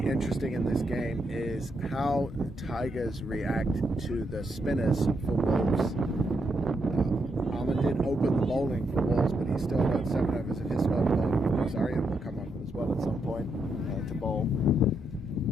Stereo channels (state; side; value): normal; both; correlation 0.80